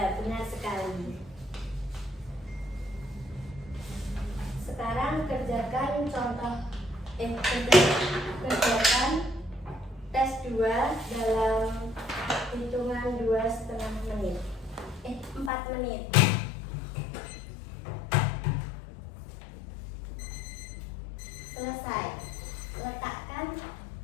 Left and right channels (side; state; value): right; drops out; at 15.5 s